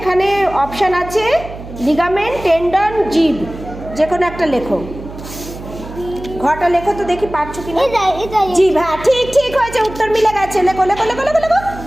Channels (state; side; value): noise; right; hum, 13 dB below the sound